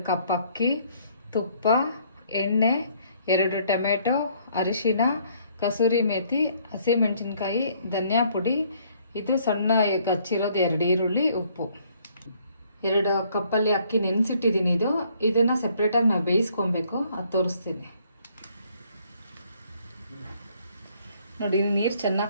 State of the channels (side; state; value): both; inverted; correlation -0.64